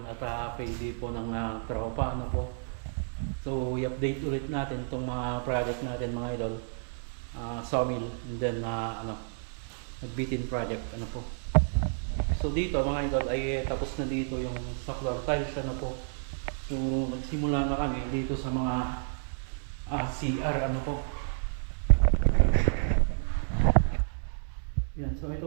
at payday po ng tropa, ano po. So i-update ulit natin itong mga project natin mga idol. Sawmill and then nagbitin project, ano po. So dito mga idol ay tapos na dito yung sa floor tiles, ano po. So nagsimula na kami dito sa mga CR, ano po. Yan, so ito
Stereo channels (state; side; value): silent; left; 57 dB below the other